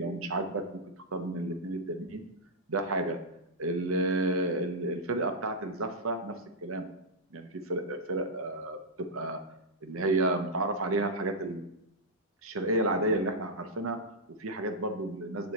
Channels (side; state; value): both; normal; correlation -0.07